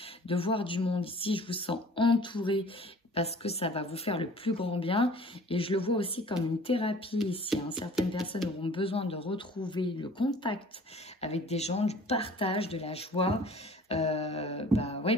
de voir du monde. Ici, je vous sens entouré parce que ça va vous faire le plus grand bien. Et je le vois aussi comme une thérapie ici. Hein. Certaines personnes auront besoin de retrouver le contact avec des gens, du partage, de la joie. Bah ouais,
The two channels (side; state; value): both; normal; correlation 0.48